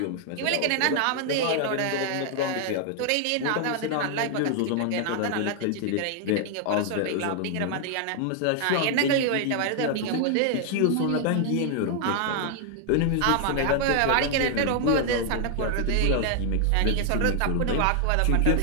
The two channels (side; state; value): both; different; correlation 0.00